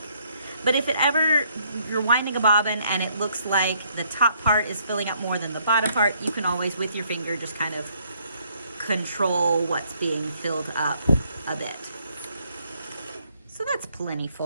But if it ever, you're winding a bobbin and it looks like the top part is filling up more than the bottom part, you can always, with your finger, just kind of control what's being filled up a bit. So that's plenty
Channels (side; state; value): both; inverted; correlation -0.69